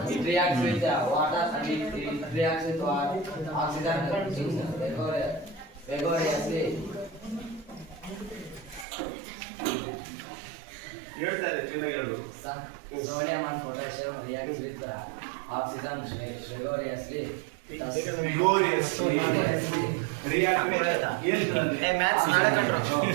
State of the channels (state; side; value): drops out; left; at 8.8 s